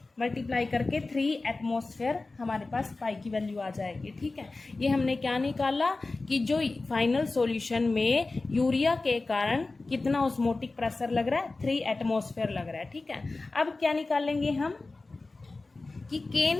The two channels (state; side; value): quieter; right; 3.4 dB